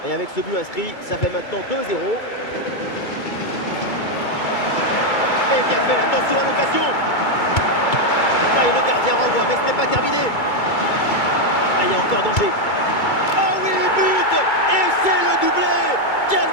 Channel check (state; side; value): late; right; 2.3 ms